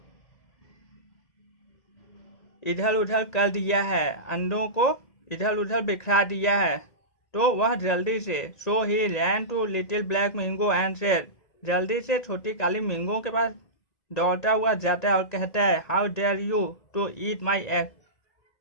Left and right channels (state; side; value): late; right; 1.9 ms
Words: इधर उधर कर दिया है, अंडों को इधर उधर बिखरा दिया है, तो वह जल्दी से so he ran to little black Mingo and said. जल्दी से छोटी काली मिंगो के पास दौड़ता हुआ जाता है और कहता है how dare you to eat my egg.